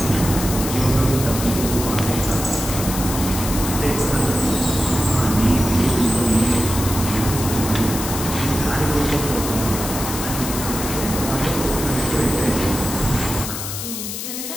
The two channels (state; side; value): noise; left; hiss, 6 dB below the sound